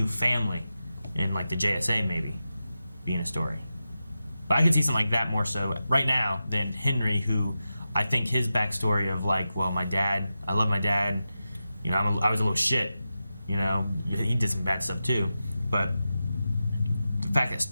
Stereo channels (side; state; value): both; inverted; correlation -0.92